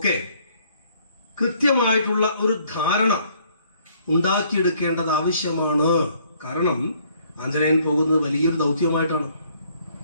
കൃത്യമായിട്ടുള്ള ഒരു ധാരണ ഉണ്ടാക്കിയെടുക്കേണ്ടത് ആവശ്യമാണ്. കാരണം ആഞ്ജനേയൻ പോകുന്നത് വലിയൊരു ദൗത്യമായിട്ടാണ്.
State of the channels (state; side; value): inverted; both; correlation -0.63